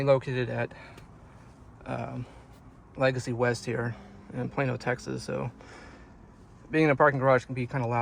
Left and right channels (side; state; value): both; identical; correlation 1.00